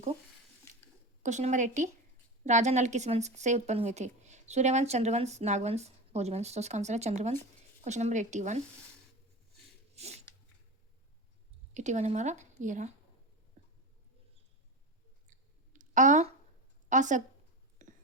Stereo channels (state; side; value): normal; both; correlation 0.24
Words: को। क्वेश्चन नंबर 80, राजा नल किस वंश से उत्पन्न हुए थे? सूर्यवंश, चंद्रवंश, नागवंश, भोजवंश। तो इसका आंसर है चंद्रवंश। क्वेश्चन नंबर 81 हमारा ये रहा।